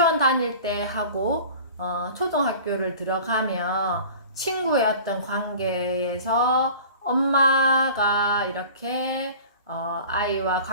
다닐 때 하고 초등학교를 들어가면 친구의 어떤 관계에서 엄마가 이렇게 아이와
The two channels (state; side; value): inverted; both; correlation -0.42